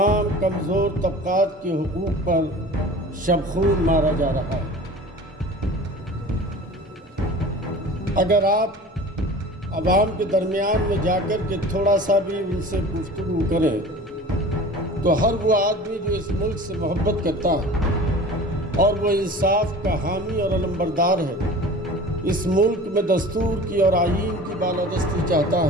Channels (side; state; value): both; normal; correlation 0.40